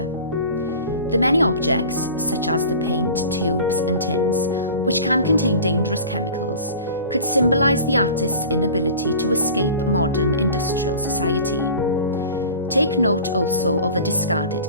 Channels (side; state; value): both; inverted; correlation -0.40